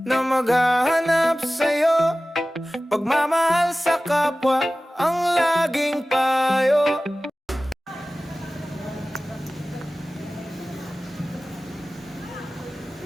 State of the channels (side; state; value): both; normal; correlation 0.97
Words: na maghahanap sa'yo, pagmamahal sa kapwa ang laging payo.